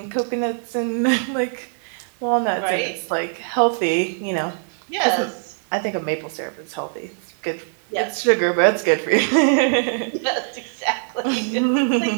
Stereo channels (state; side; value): silent; left; 61 dB below the other